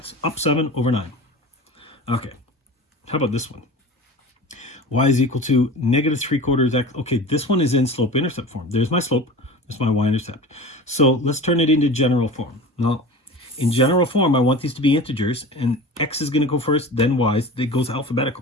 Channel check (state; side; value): normal; both; correlation 0.35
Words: up 7 over 9. Okay, how about this one? Y is equal to negative 3/4 x. Okay, this one is in slope-intercept form. There's my slope. There's my y-intercept. So let's turn it into general form. Now, in general form, I want these to be integers, and x is going to go first, then y's. It goes